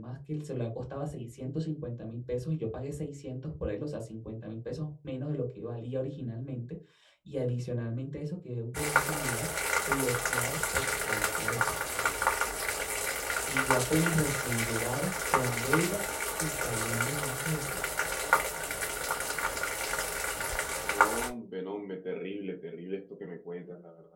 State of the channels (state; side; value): identical; both; correlation 1.00